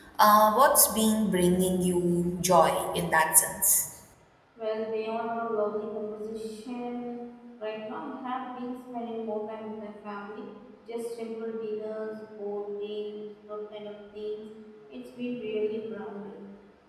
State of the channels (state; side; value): identical; both; correlation 1.00